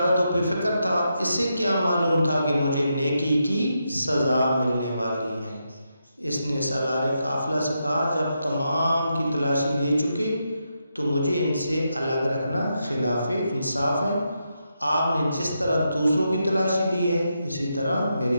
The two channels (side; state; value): both; inverted; correlation -0.84